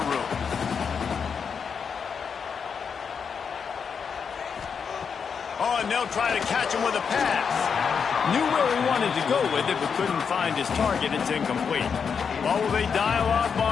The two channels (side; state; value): right; quieter; 6.4 dB